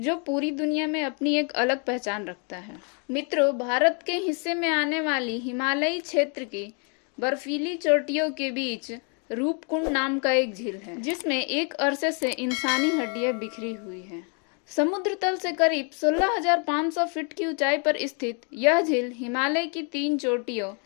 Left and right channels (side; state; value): right; quieter; 38.3 dB